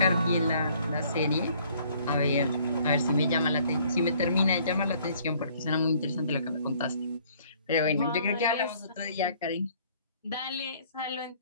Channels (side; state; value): both; inverted; correlation -0.60